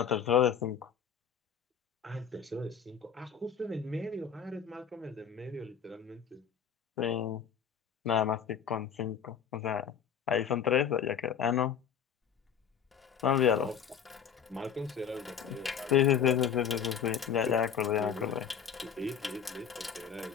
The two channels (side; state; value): right; quieter; 7.7 dB